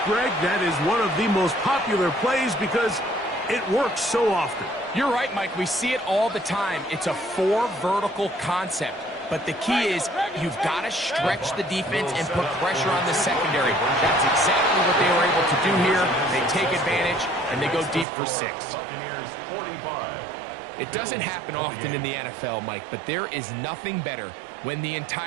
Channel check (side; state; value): left; drops out; at 18.1 s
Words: Greg, that is one of the most popular plays because it works so often. You're right, Mike. We see it all the time. It's a 4 vertical concept. But the key is you've got to stretch the defense and put pressure on the secondary. That's exactly what they were able to do here. They take advantage, and they go deep for 6. Buccaneers 45. It doesn't happen often in the NFL, Mike, but there is nothing better when the